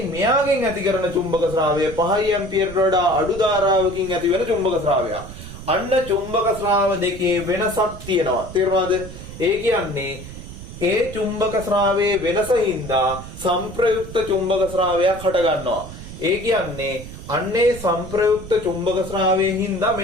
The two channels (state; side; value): noise; right; rumble, 13 dB below the sound